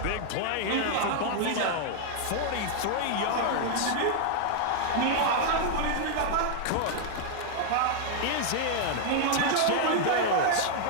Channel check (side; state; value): both; different; correlation 0.00